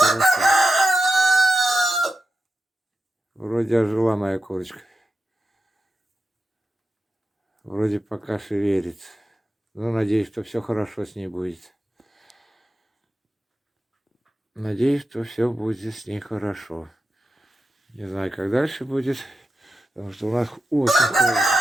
Вроде ожила моя курочка. Вроде пока шевелится. Ну, надеюсь, что все хорошо с ней будет. Надеюсь, что все будет с ней хорошо. Не знаю, как дальше будет, потому что у нас очень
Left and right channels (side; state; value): both; normal; correlation 0.90